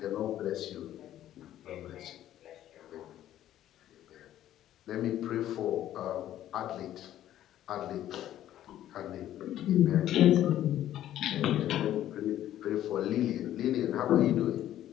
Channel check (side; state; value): right; quieter; 12.3 dB